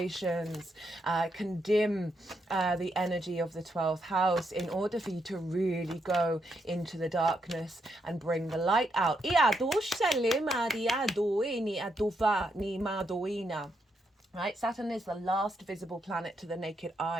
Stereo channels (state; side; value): normal; both; correlation 0.80